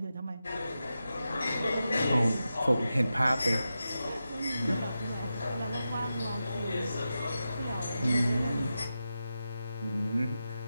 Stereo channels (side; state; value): both; inverted; correlation -0.91